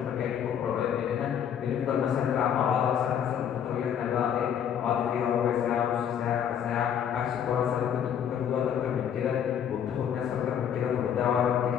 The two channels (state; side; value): quieter; right; 8.8 dB